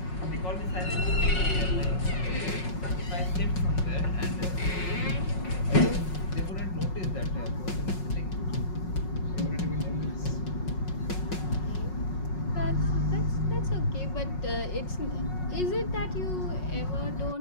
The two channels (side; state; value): right; late; 5.5 ms